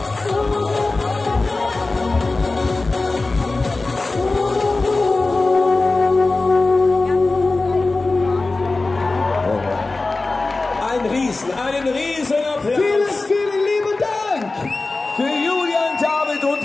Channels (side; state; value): right; quieter; 3.4 dB